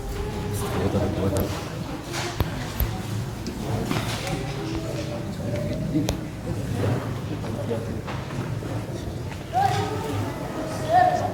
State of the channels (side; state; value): both; identical; correlation 1.00